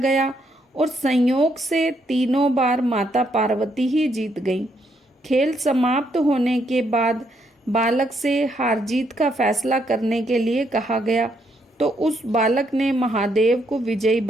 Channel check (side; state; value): both; normal; correlation 0.75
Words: और संयोग से तीनों बार माता पार्वती ही जीत गईं। खेल समाप्त होने के बाद बालक से हार जीत का फैसला करने के लिए कहा गया तो उस बालक ने महादेव को विजयी